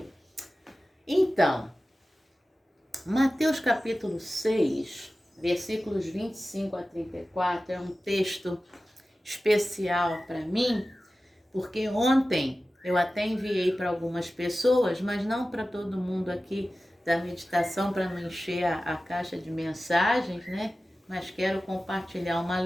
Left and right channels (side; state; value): both; normal; correlation 0.95